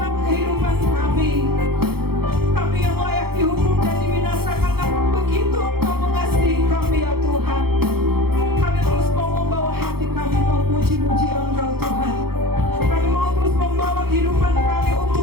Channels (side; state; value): left; late; 0.95 ms